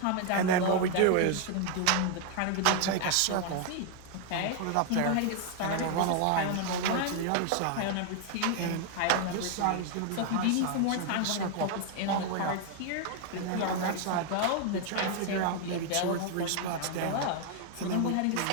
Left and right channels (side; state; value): both; different; correlation 0.00